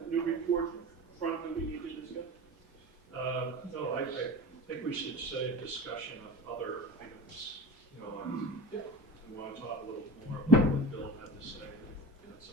new report front that we need to discuss? No, I think we should say a discussion of other items. You know, we want to talk a little more about what Bill had to say, and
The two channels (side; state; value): both; normal; correlation 0.33